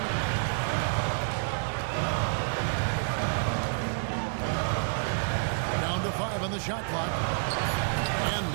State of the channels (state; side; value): silent; left; 58 dB below the other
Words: Down to 5 on the shot clock. And